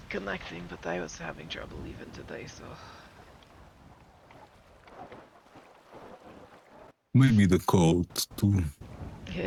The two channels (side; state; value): both; identical; correlation 1.00